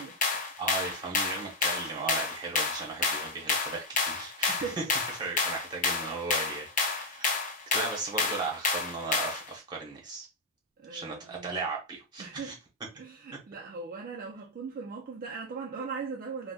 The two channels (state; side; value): normal; both; correlation 0.01